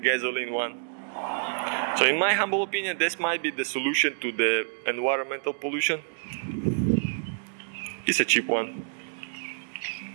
one. So in my humble opinion, this might be the solution to the environmental pollution. It's a cheap one.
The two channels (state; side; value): silent; left; digital silence